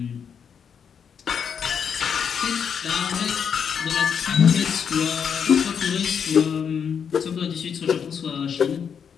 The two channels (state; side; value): quieter; right; 7.2 dB